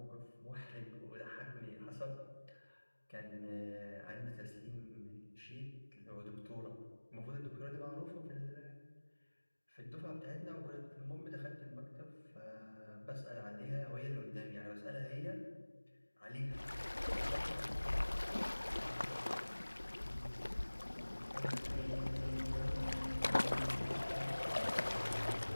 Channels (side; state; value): both; inverted; correlation -1.00